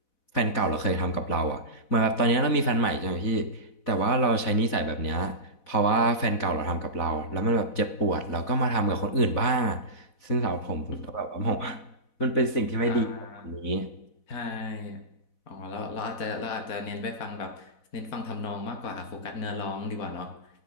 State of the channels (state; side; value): late; right; 4.0 ms